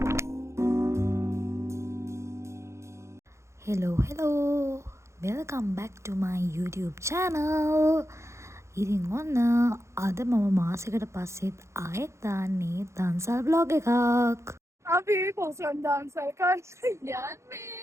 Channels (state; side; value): late; left; 0.14 ms